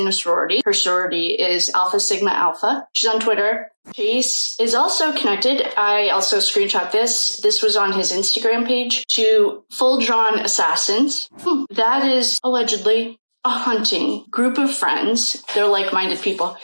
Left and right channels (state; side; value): inverted; both; correlation -1.00